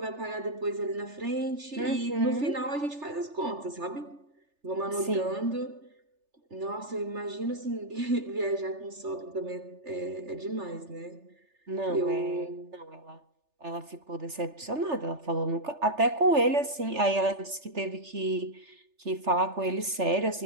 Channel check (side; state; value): left; late; 3.4 ms